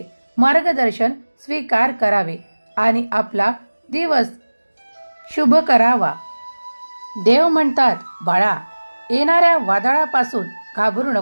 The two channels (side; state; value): both; inverted; correlation -1.00